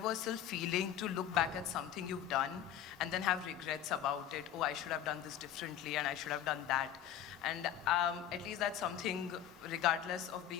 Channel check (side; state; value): right; quieter; 10.5 dB